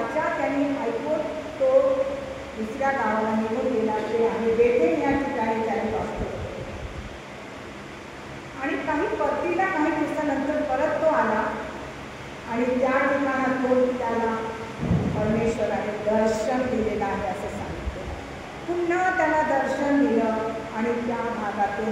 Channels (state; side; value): identical; both; correlation 1.00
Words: त्यांनी ऐकून तो दुसऱ्या गावाला निघून गेला, ते आहे बेथेल या ठिकाणी त्याने वाचतो. आणि परतीला काही दिवसानंतर परत तो आला आणि त्या ठिकाणातून त्याला परमेश्वराने दर्शन दिलेलं आहे असं सांगितलं. पुन्हा त्याला दर्शन दिलं आणि त्या भागातून